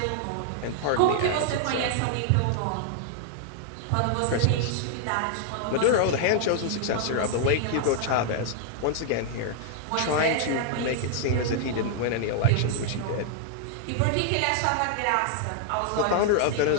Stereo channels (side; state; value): both; different; correlation -0.01